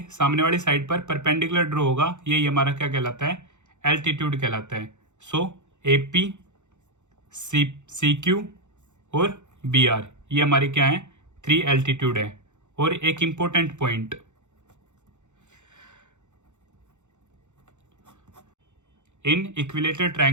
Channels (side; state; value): left; late; 0.84 ms